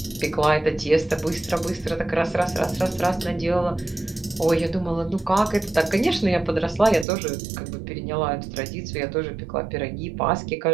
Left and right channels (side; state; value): left; drops out; at 7.1 s